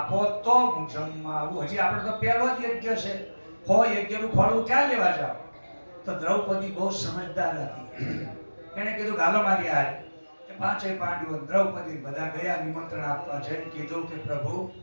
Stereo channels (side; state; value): both; inverted; correlation -1.00